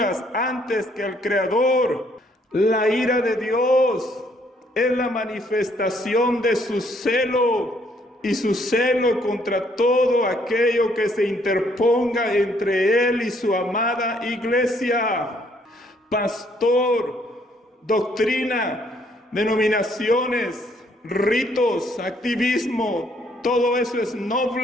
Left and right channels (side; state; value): both; normal; correlation 0.67